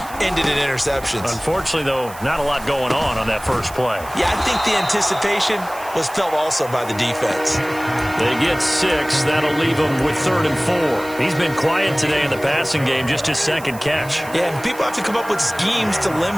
ended in interceptions. Unfortunately, though, not a lot going on that first play. Yeah, I think the anticipation was felt also by the defense. They get 6. That'll leave them with 3rd and 4. He's been quiet today in the passing game, just his 2nd catch. Yeah, and people have to come up with schemes to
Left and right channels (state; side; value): noise; right; hiss, 18 dB below the sound